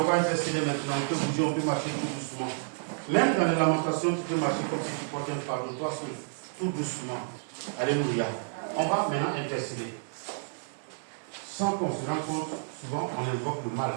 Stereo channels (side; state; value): left; silent; 58 dB below the other